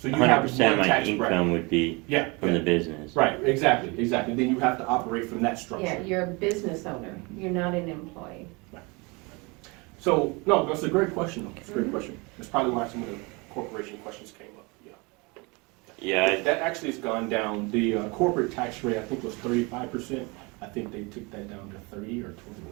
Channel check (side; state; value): left; quieter; 27.6 dB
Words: you have 100% of one my tax income bracket. would be yeah, from the business. right, exactly. Then you have to operate from that structure. Yeah, you're a business owner. You're not an employee. So, no, that's a great question, though. It's a great question. That's probably why some of the corporation questions came up, yeah. Yeah, That actually has gone down. The corporate tax rate, I think, was 35%. I think they took that down to 30 or